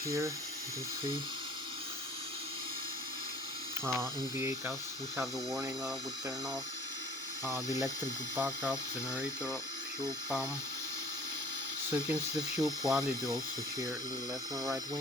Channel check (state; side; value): normal; both; correlation 0.49